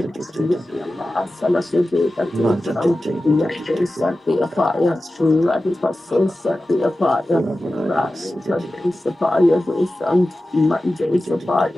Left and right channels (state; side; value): normal; both; correlation 0.94